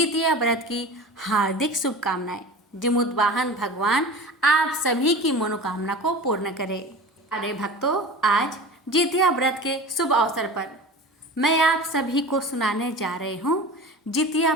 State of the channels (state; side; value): normal; both; correlation 0.35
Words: व्रत की हार्दिक शुभकामनाएं। जमुद्वाहन भगवान आप सभी की मनोकामना को पूर्ण करे। अरे भक्तों, आज जितिया व्रत के शुभ अवसर पर मैं आप सभी को सुनाने जा रही हूँ जितिया